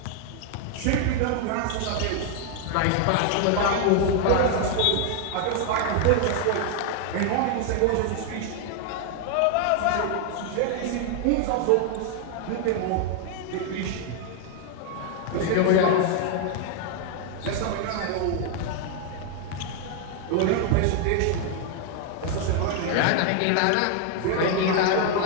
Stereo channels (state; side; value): different; both; correlation 0.00